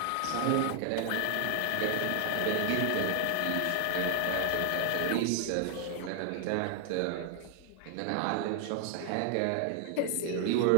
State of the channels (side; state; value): both; different; correlation 0.00